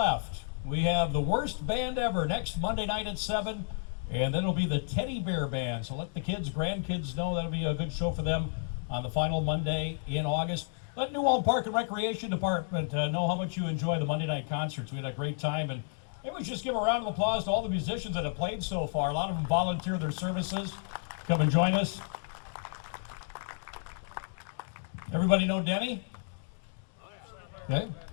We have the worst band ever next Monday night at 7, and then it'll be the Teddy Bear Band. So let the kids, grandkids know that'll be a good show for them on the final Monday in August. Let New Ulm Park and Recreation Department know how much you enjoy the Monday night concerts. We had a great time, and maybe we should just give a round of applause to all the musicians that have played so far. A lot of them volunteer their services. Come and join us. Everybody know Denny? Okay.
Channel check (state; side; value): silent; right; digital silence